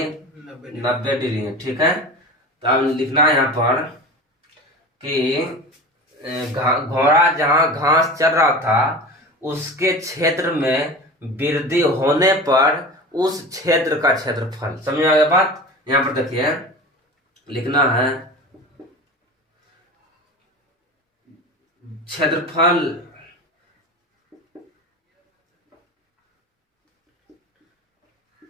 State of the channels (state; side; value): normal; both; correlation 0.32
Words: 90 डिग्री, ठीक है। तो अब लिखना है यहाँ पर कि घोड़ा जहां घास चल रहा था उसके क्षेत्र में वृद्धि होने पर उस क्षेत्र का क्षेत्रफल। समझ आ गया बात। यहाँ पर देखिए लिखना है क्षेत्रफल